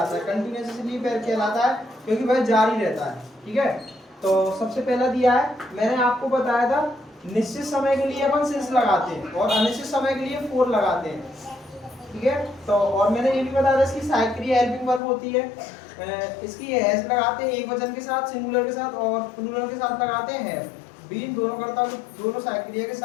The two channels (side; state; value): right; drops out; at 15.0 s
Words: है। कंटीन्यूअस इसलिए कहलाता है क्योंकि वह जारी रहता है। ठीक है, तो सबसे पहला दिया है, मैंने आपको बताया था निश्चित समय के लिए अपन सिंस लगाते हैं और अनिश्चित समय के लिए फोर लगाते हैं। ठीक है, तो और मैंने ये भी बताया था इसकी सहायक हेल्पिंग वर्ब होती है। इसकी हैज लगाते हैं एक वचन के साथ, सिंगुलर के साथ, और प्लूरल के साथ लगाते हैं बीन। दोनों करता दोनों सहायक क्रिया के